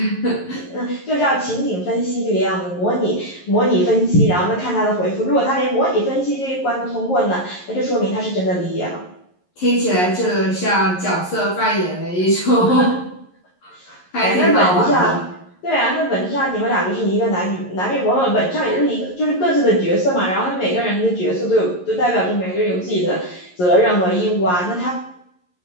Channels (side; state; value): right; late; 11 ms